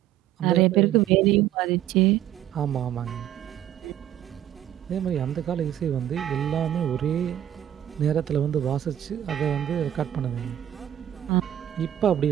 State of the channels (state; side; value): quieter; left; 11.5 dB